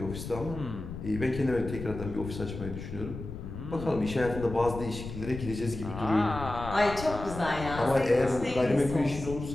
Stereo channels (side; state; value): left; noise; rumble, 9 dB below the sound